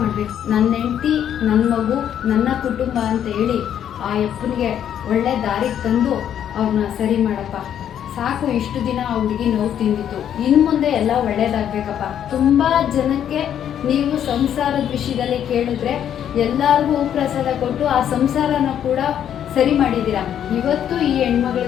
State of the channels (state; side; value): quieter; right; 9.7 dB